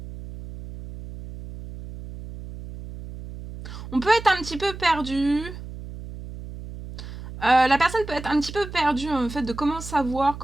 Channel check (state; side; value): noise; right; hum, 12 dB below the sound